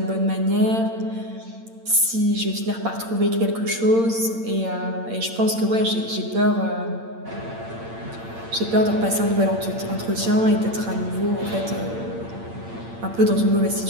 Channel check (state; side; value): late; left; 8.8 ms